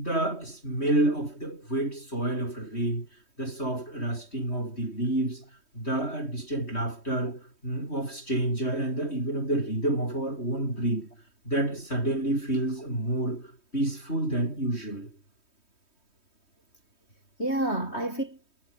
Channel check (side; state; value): right; late; 3.2 ms